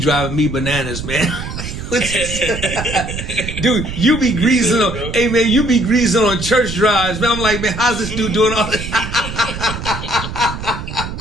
me bananas, man. Dude, you be greasing on. Hey, man, you be greasing on church drives, man. I'm like, man, how's this dude doing all this?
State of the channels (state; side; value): noise; right; rumble, 7 dB below the sound